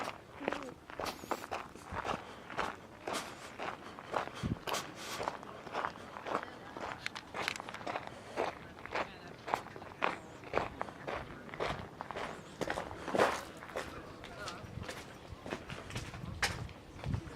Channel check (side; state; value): both; identical; correlation 1.00